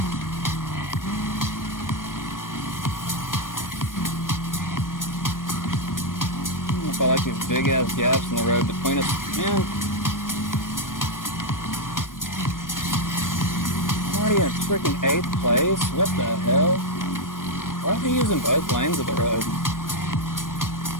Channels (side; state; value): right; late; 0.89 ms